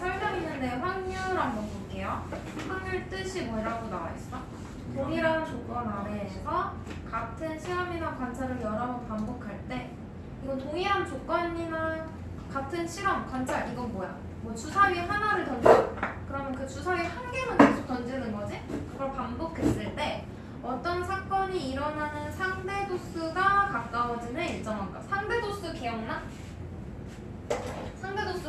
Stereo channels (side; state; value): both; identical; correlation 1.00